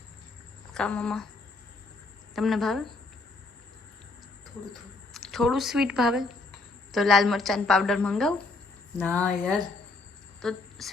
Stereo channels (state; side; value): quieter; right; 3.5 dB